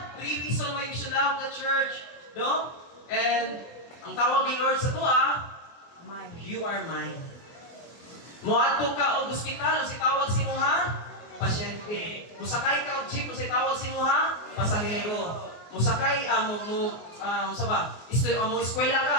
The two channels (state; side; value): late; right; 24 ms